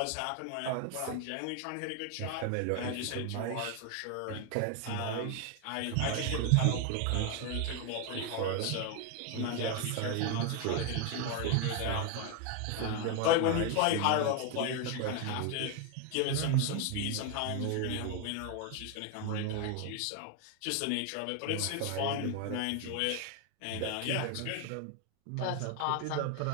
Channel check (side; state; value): both; different; correlation 0.01